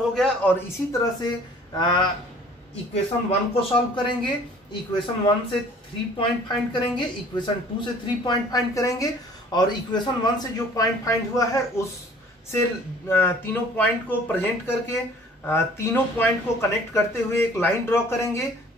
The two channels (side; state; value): both; normal; correlation 0.52